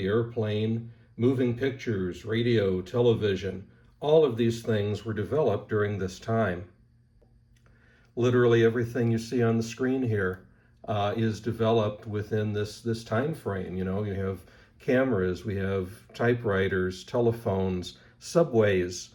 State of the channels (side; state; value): both; identical; correlation 1.00